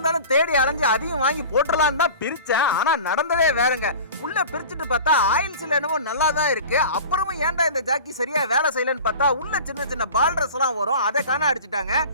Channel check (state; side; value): inverted; both; correlation -0.38